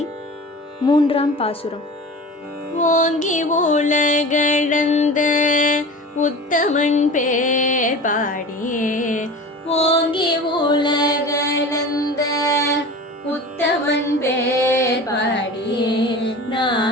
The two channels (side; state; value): both; normal; correlation 0.35